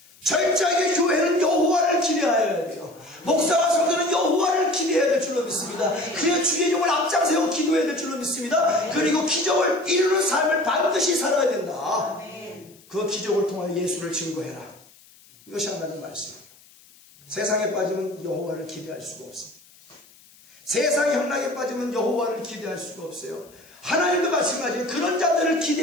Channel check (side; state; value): left; noise; hiss, 27 dB below the sound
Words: 철저하게 교회는 여호와를 기대하여야 돼요. 목사와 성도는 여호와를 기대해야 될 줄로 믿습니다. 그래야 주의 종을 앞장세우고 기도해야 될 줄로 믿습니다. 그리고 기적을 이루는 삶을 반드시 살아야 된다. 그 기적을 통하여 예수를 증거해라. 이것이 하나님의 말씀이에요. 세상에 빠지면 여호와를 기대할 수가 없습니다. 세상의 향락에 빠지면 여호와를 기대할 수가 없어요. 하나님도 마찬가지예요. 그런 자들을